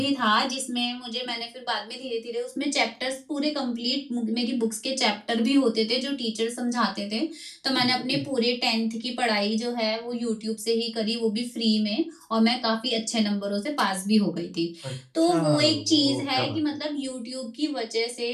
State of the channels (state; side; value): identical; both; correlation 1.00